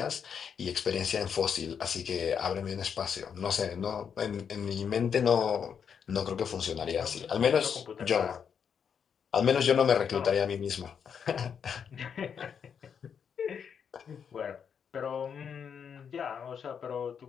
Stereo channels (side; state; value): right; quieter; 7.2 dB